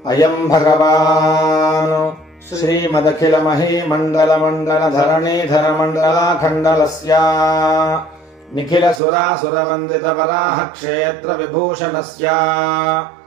अयम् भगवान् श्रीमदखिलमहीमण्डलमण्डलधरणीधर मण्डलाखण्डलस्य निखिलसुरासुरवन्दितवराह क्षेत्र विभूषणस्य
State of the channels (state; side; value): drops out; left; at 9.0 s